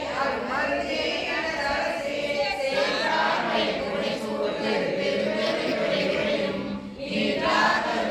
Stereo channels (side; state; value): both; identical; correlation 1.00